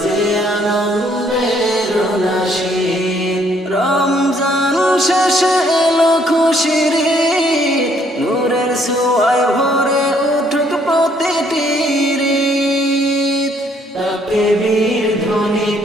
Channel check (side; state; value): both; normal; correlation 0.66